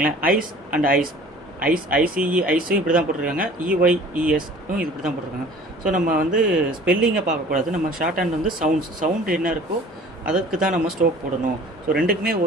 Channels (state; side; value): normal; both; correlation 0.47